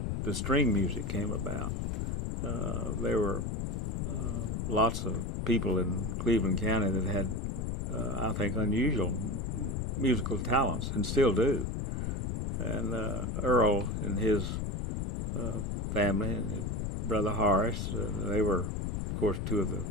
the string music came about. There were lots of people in Cleveland County that had, I think, unusual musical talents, and still do. And Earl and his family and his brother Horace, they were, of course, two of the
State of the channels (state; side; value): noise; left; rumble, 1 dB below the sound